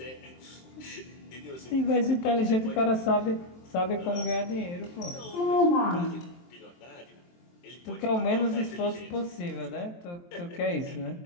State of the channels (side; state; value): right; late; 23 ms